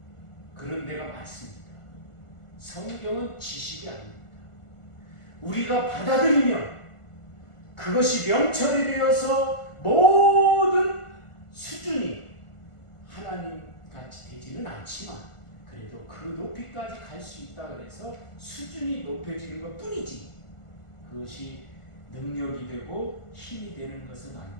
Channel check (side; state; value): right; late; 1.5 ms